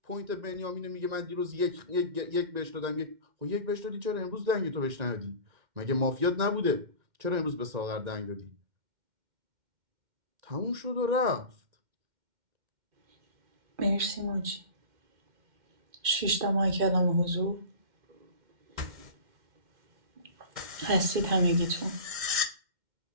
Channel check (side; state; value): left; late; 2.1 ms